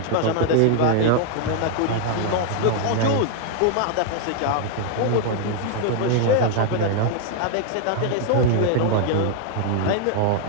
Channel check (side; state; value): both; different; correlation 0.00